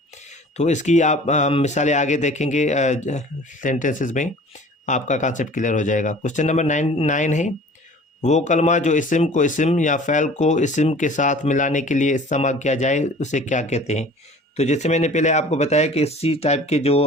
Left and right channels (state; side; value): normal; both; correlation 0.46